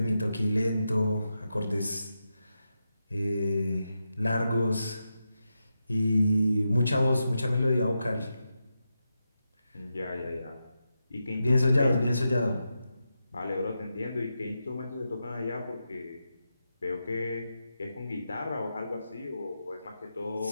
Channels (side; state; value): both; inverted; correlation -0.88